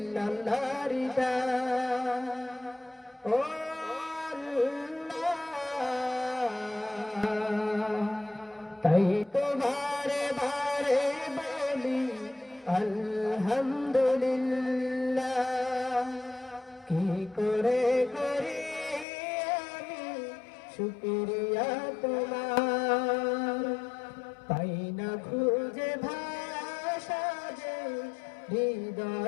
গান। ও আল্লাহ, তাই তো বারে বারে বলি আলহামদুলিল্লাহ। কি করে করি আমি শুকরিয়া তোমার, পাই না খুঁজে ভাষা যে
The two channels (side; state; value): right; drops out; at 19.1 s